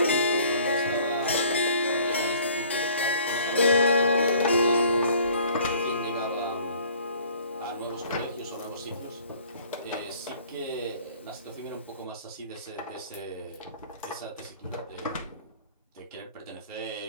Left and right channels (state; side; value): inverted; both; correlation -0.54